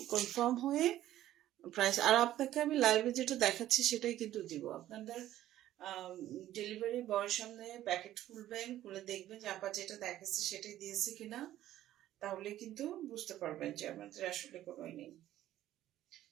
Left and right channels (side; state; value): left; quieter; 13.3 dB